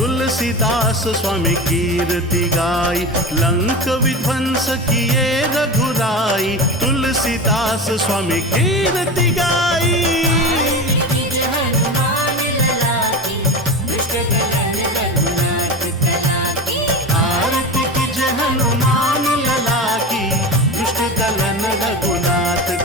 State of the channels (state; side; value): normal; both; correlation 0.26